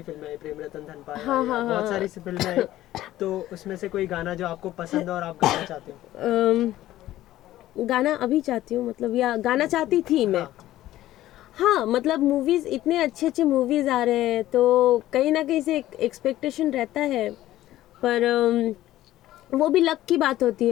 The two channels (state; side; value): quieter; right; 14.5 dB